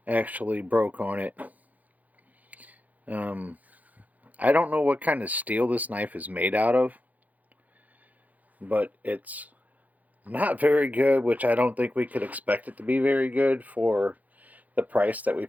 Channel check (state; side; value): late; left; 0.078 ms